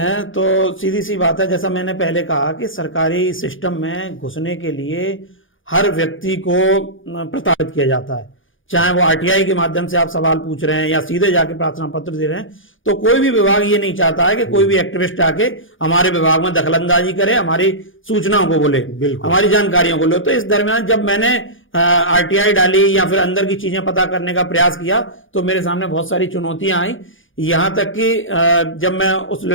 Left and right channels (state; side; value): late; right; 0.58 ms